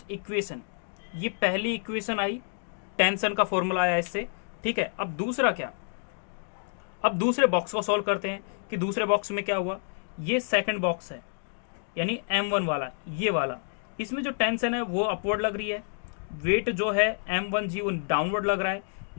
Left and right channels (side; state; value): right; silent; digital silence